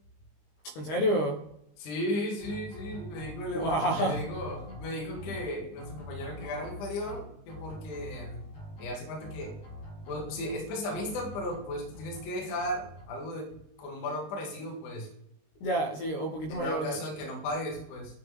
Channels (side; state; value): right; late; 19 ms